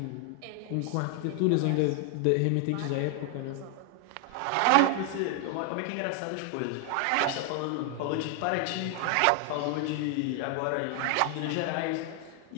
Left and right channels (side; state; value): both; different; correlation 0.00